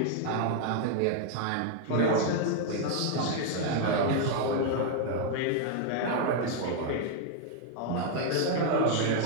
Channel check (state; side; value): different; both; correlation 0.00